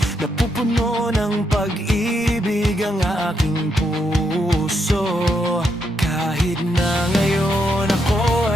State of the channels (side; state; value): both; normal; correlation 0.79